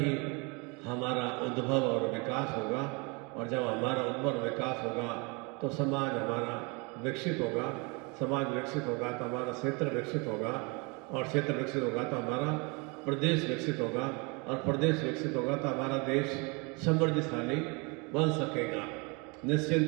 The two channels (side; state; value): left; quieter; 30.1 dB